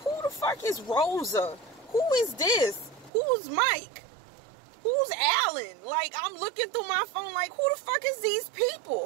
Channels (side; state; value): left; drops out; at 3.1 s